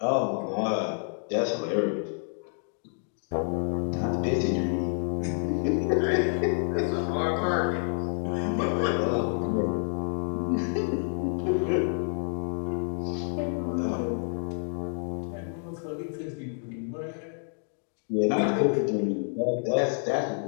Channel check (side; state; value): right; silent; 56 dB below the other